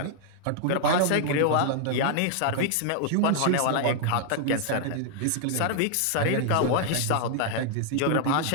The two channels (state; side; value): different; both; correlation 0.00